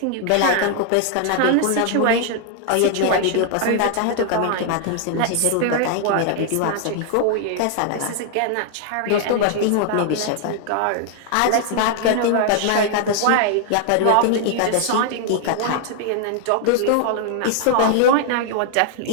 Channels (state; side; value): different; both; correlation 0.00